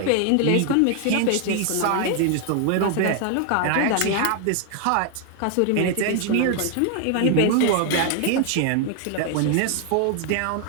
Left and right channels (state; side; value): different; both; correlation 0.00